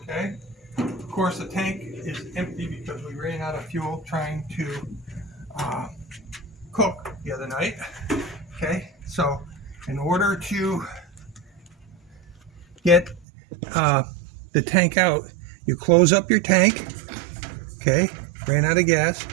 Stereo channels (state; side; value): drops out; left; at 13.2 s